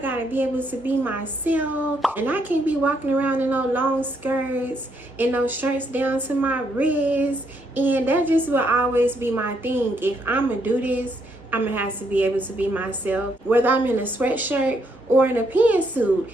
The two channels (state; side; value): normal; both; correlation 0.74